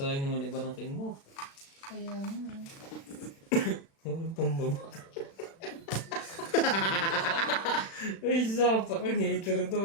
naman iba ng king mo. Kaya nga. Walang pambaba. Ay, sapa kang hater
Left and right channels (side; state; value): right; late; 36 ms